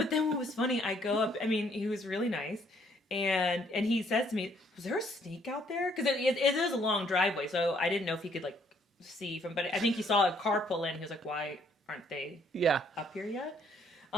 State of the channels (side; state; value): both; normal; correlation 0.66